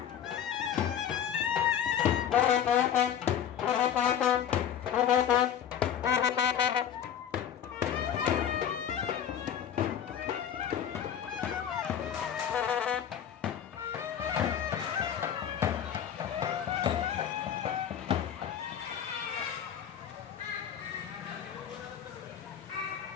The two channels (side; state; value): right; quieter; 9.2 dB